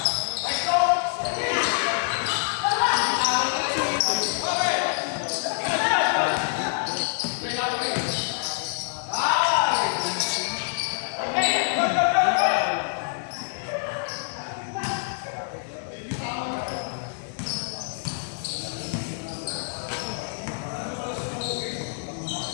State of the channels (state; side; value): silent; right; digital silence